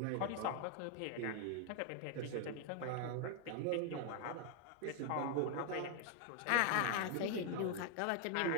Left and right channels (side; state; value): both; different; correlation 0.00